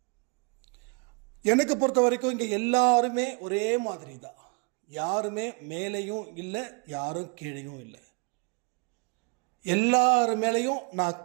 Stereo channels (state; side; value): quieter; left; 31.3 dB